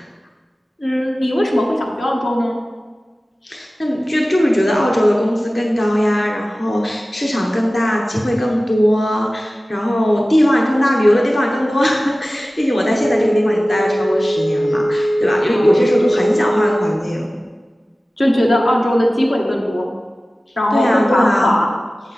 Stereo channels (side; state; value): both; normal; correlation 0.97